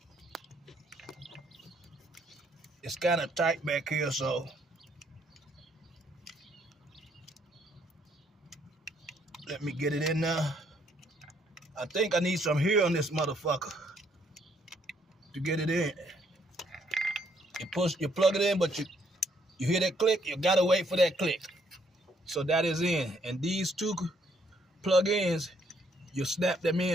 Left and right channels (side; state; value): both; normal; correlation 0.69